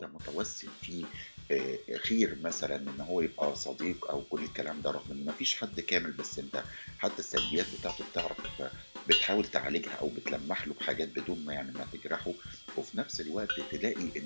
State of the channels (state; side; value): inverted; both; correlation -1.00